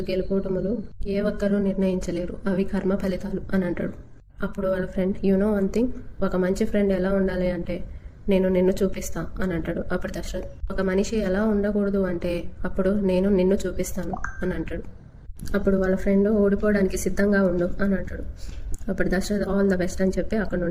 గెలుపోటములు ఏ ఒక్కరూ నిర్ణయించలేరు, అవి కర్మ ఫలితాలు అని అంటాడు. అప్పుడు వాళ్ళ friend you know one thing, ఒక మంచి ఫ్రెండ్ ఎలా ఉండాలి అంటే నేను నిన్ను చూపిస్తా అని అంటాడు. అప్పుడు దశరథ్ ఒక మనిషి ఎలా ఉండకూడదు అంటే అప్పుడు నేను నిన్ను చూపిస్తాను అని అంటాడు. అప్పుడు వాళ్ళ ఫ్రెండ్ ఓడిపోవడానికి సిద్ధంగా ఉండు అని అంటాడు. అప్పుడు దశరథ్ ఆల్ ద బెస్ట్ అని చెప్పి అక్కడ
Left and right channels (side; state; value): both; identical; correlation 1.00